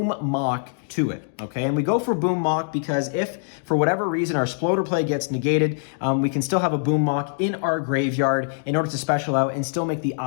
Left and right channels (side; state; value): right; silent; digital silence